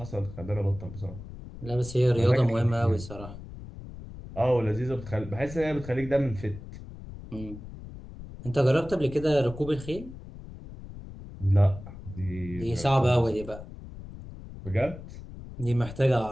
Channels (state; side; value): noise; left; rumble, 13 dB below the sound